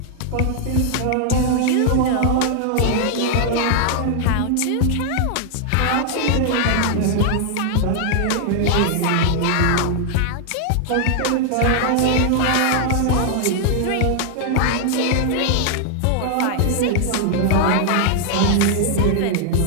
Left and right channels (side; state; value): both; different; correlation 0.00